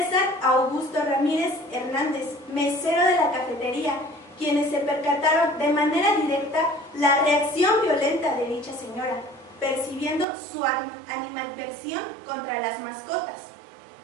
Augusto Ramírez Hernández, mesero de la cafetería, quienes se percataron de manera directa la reacción violenta de dicha señora, percibiendo su animadversión contra las mascotas.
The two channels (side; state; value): left; drops out; at 10.2 s